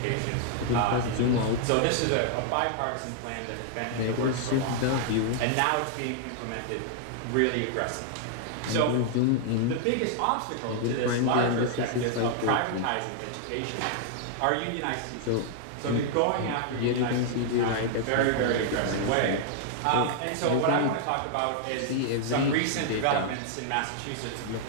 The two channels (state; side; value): different; both; correlation -0.01